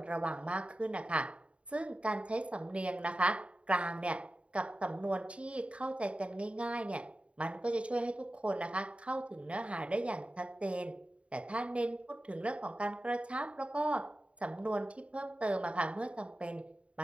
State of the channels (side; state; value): left; late; 0.061 ms